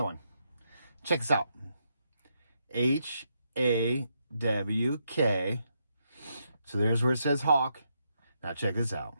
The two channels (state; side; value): inverted; both; correlation -0.80